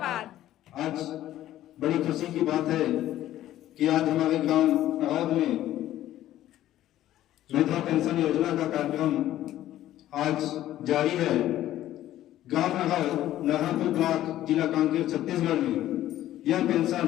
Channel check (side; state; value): right; quieter; 13.4 dB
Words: आज बड़ी खुशी की बात है कि आज हमारे गांव नहौद में विधवा पेंशन योजना का कार्यक्रम आज जारी है। गांव नहरपुर ब्लॉक जिला कांकेर छत्तीसगढ़ में यह पेंशन